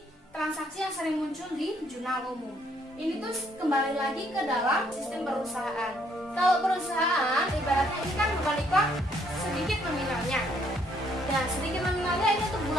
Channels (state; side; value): normal; both; correlation 0.68